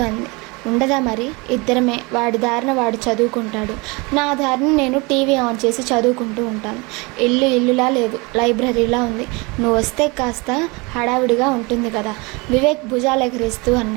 అంది. ఉండదా మరి? ఇద్దరమే. వాడి దారిన వాడు చదువుకుంటాడు, నా దారిన నేను టీవీ ఆన్ చేసి చదువుకుంటూ ఉంటాను. ఇల్లులా లేదు, లైబ్రరీలా ఉంది. నువ్వు వస్తే కాస్త హడావిడిగా ఉంటుంది కదా. వివేక్ భుజాలు ఎగరేస్తూ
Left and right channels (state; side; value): quieter; left; 26.8 dB